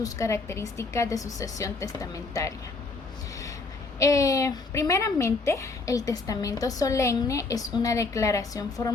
características de sucesión testamentaria. Primeramente, el testamento solemne es una declaración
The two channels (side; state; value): right; quieter; 3.9 dB